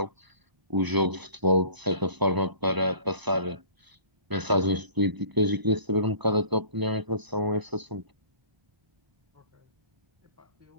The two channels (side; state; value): left; late; 1.0 ms